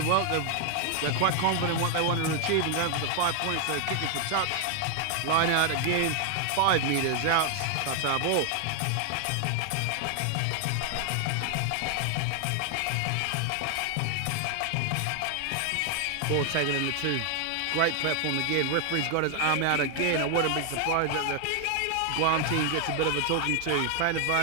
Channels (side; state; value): both; different; correlation 0.00